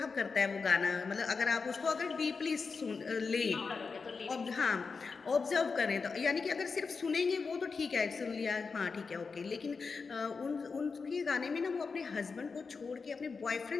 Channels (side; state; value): right; quieter; 4.8 dB